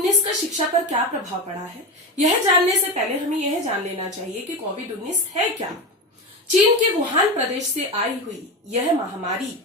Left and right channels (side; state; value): both; normal; correlation 0.20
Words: का शिक्षा पर क्या प्रभाव पड़ा है, यह जानने से पहले हमें यह जान लेना चाहिए कि कोविड-19 है क्या। चीन के वुहान प्रदेश से आई हुई यह महामारी